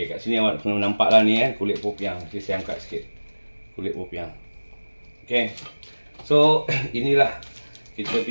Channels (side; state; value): both; inverted; correlation -1.00